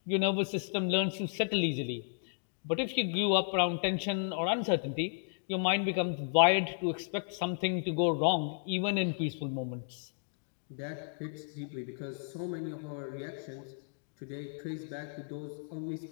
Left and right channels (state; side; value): silent; right; digital silence